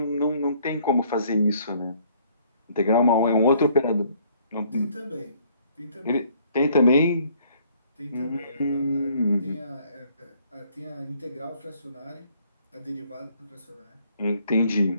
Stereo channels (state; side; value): inverted; both; correlation -0.63